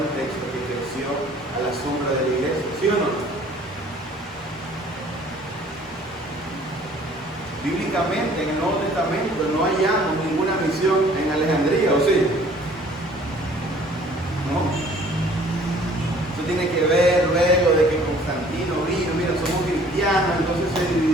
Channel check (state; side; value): normal; both; correlation 0.54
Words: texto que creció a la sombra de la iglesia, ¿sí o no? Bíblicamente, en el Nuevo Testamento no hallamos ninguna misión en Alejandría, ¿o sí? ¿No? Eso tiene que ver luego de que Constantino vino, mira, somos cristianos, entonces se